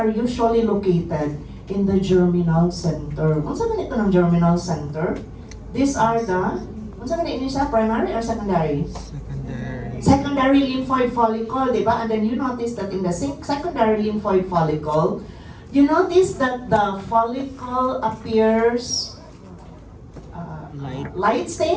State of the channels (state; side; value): identical; both; correlation 1.00